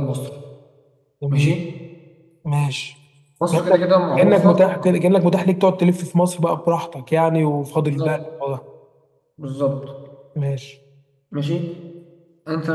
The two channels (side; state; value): both; identical; correlation 1.00